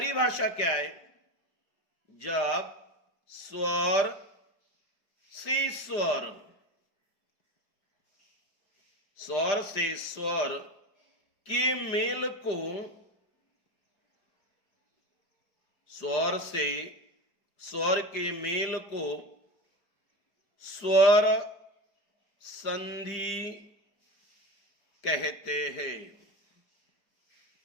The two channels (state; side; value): late; right; 5.0 ms